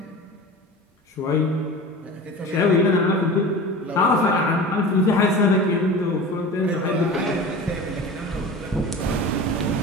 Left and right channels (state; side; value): normal; both; correlation 0.34